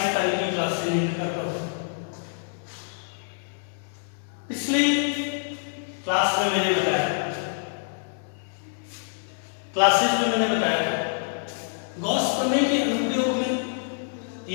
तारीख की क्लास से लिंक करता हूँ। पिछली क्लास में मैंने बताया था गॉस प्रमेय के अनुप्रयोग में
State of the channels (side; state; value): right; silent; digital silence